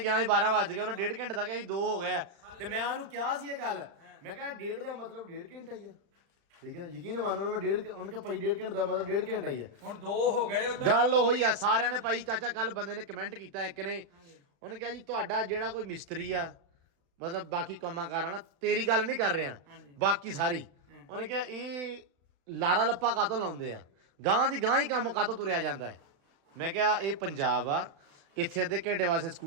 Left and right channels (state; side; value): late; left; 36 ms